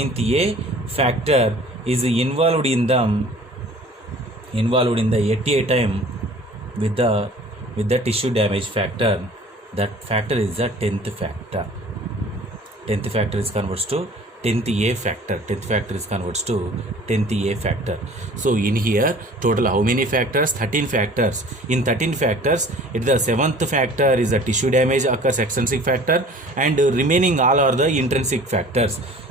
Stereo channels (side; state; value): both; normal; correlation 0.48